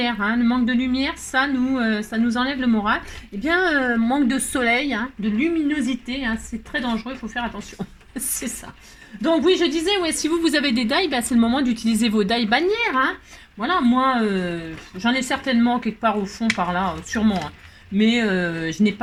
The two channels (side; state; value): both; identical; correlation 1.00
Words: Hein. Le manque de lumière, ça nous enlève le moral. Eh bien, manque de soleil, hein, de luminosité, hein, c'est très dangereux, il faut faire attention. C'est ça. Donc oui, je disais, ouais, si vous avez des dailles, bah, c'est le moment d'utiliser vos dailles bannières. Hein. Voilà, moi, j'en ai certainement quelque part au fond, par là, sûrement. Hein. Mais je n'ai